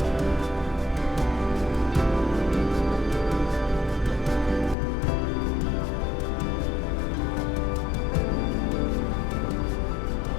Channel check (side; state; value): right; drops out; at 4.8 s